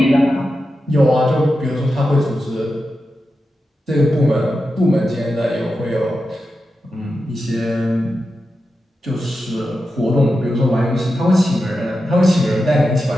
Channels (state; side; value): normal; both; correlation 0.90